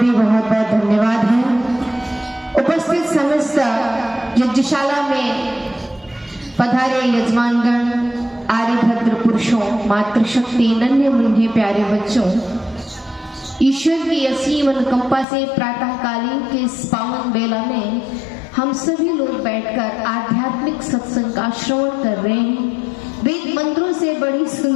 बहुत बहुत धन्यवाद है। उपस्थित समस्त यज्ञशाला में पधारे यजमानगण, आर्यभद्र पुरुषों, मातृशक्ति, नन्हे मुन्ने प्यारे बच्चों, ईश्वर की असीम अनुकंपा से प्रातःकालीन के इस पावन बेला में हम सभी लोग बैठकर आध्यात्मिक सत्संग का श्रवण कर रहे हैं। वेद मंत्रों से बड़ी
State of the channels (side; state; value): right; drops out; at 15.2 s